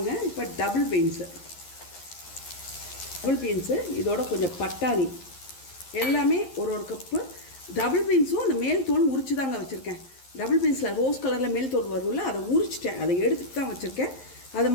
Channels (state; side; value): late; right; 11 ms